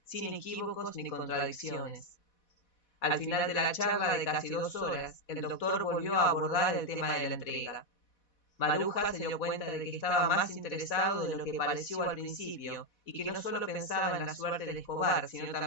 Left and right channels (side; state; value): right; late; 4.1 ms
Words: sin equívocos ni contradicciones. Al final de la charla de casi 2 horas, el doctor volvió a abordar el tema de la entrega. Maruja se dio cuenta de que estaba más interesado de lo que pareció al principio y que no solo pensaba en la suerte de Escobar, sino